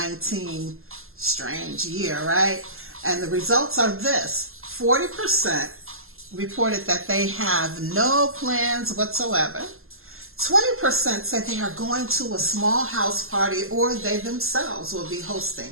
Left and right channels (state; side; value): late; left; 0.62 ms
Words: strange year, right? And the results are this: 40% reported that they have no plans whatsoever. 20% said they are going to a small house party, or they themselves will be